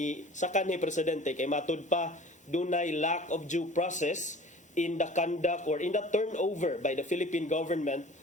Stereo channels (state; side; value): normal; both; correlation 0.44